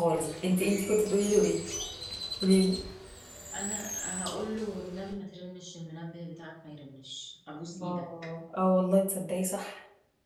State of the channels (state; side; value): identical; both; correlation 1.00